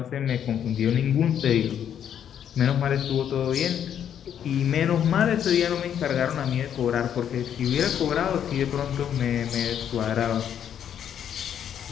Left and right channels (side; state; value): right; quieter; 9.2 dB